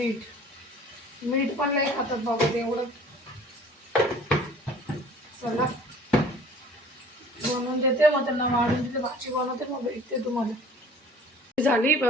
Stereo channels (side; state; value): both; normal; correlation 0.49